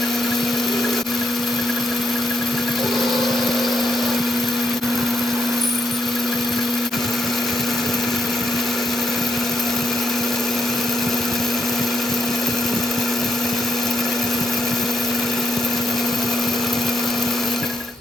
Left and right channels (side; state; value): both; normal; correlation 0.81